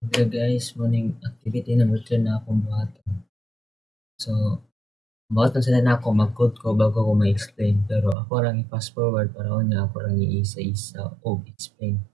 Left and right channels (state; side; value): drops out; left; at 8.2 s